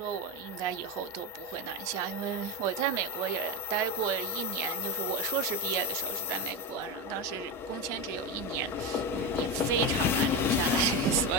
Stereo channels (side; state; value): both; normal; correlation 0.16